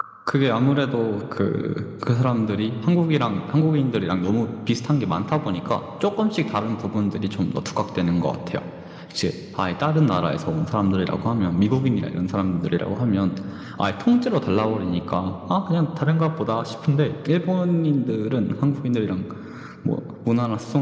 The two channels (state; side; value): identical; both; correlation 1.00